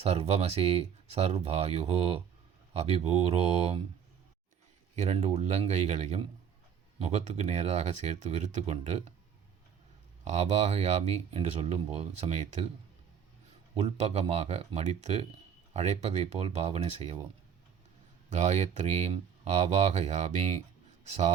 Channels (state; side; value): quieter; left; 7.7 dB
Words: சர்வாயுஹோ அபிபூரோம். 2 உள்ளங்கைகளையும் முகத்துக்கு நேராக சேர்த்து விரித்து கொண்டு ஆபாகயாமி என்று சொல்லும்போது சமயத்தில் உள்பக்கமாக மடித்து அழைப்பதைப் போல் பாவனை செய்யவும். காயத்ரீம் ஆவாகயாமி,